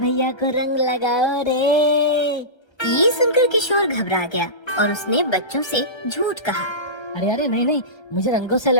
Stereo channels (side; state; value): right; late; 1.3 ms